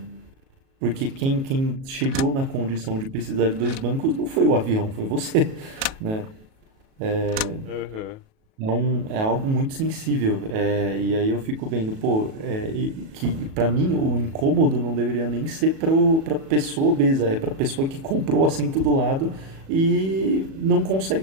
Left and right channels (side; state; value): left; late; 37 ms